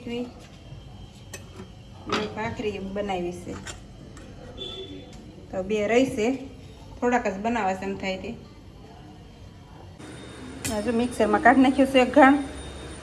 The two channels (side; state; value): both; identical; correlation 1.00